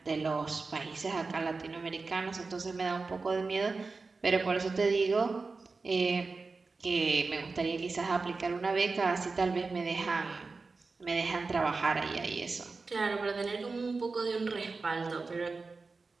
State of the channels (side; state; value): left; quieter; 4.1 dB